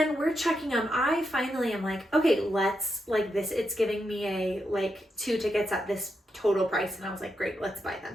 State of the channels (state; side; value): normal; both; correlation 0.84